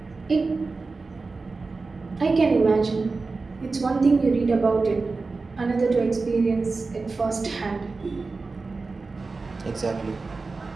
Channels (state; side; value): quieter; left; 4.0 dB